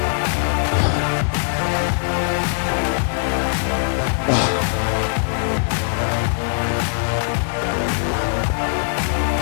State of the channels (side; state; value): right; silent; digital silence